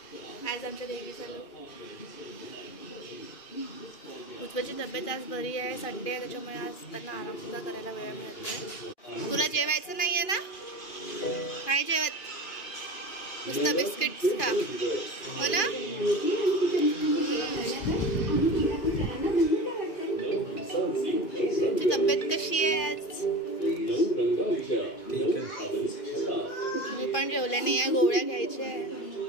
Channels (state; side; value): late; right; 2.5 ms